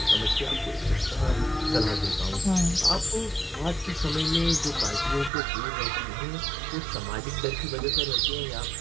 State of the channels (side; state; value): left; drops out; at 5.3 s